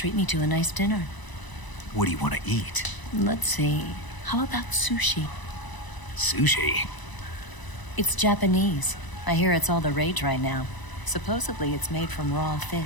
me to a nice dinner. What do you want to eat? Let's see. How about sushi? Sushi? It's Japanese. I hear it's all the rage right now. Supposedly it's made from raw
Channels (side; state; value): right; late; 1.0 ms